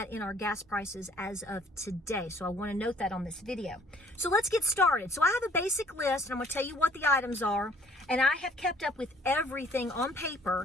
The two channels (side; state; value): both; normal; correlation 0.58